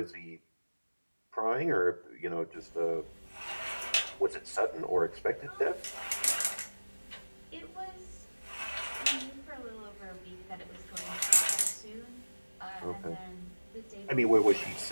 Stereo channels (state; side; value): inverted; both; correlation -1.00